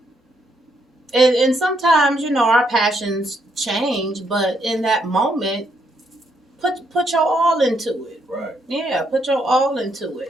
And sometimes, our passions change, but in that moment, put your all into it. Right. Yeah, put your all into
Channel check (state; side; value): normal; both; correlation 0.75